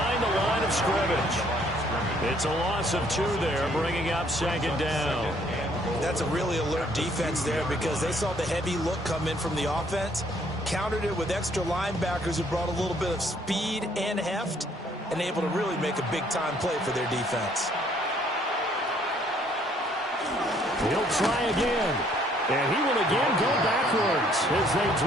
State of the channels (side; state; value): both; normal; correlation 0.64